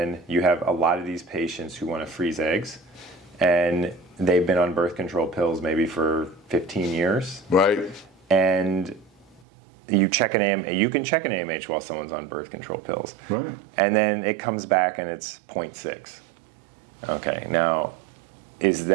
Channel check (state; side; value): drops out; left; at 9.4 s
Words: you have a lot of these patients who want to freeze eggs, and they've been on birth control pills maybe for 15 years. Right. And you check an you can check an AMH while someone's on birth control pills. Right. And then it comes back and it's 0.6. Okay, now, is